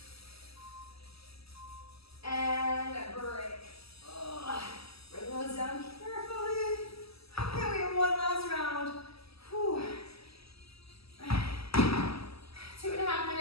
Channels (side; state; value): right; late; 0.77 ms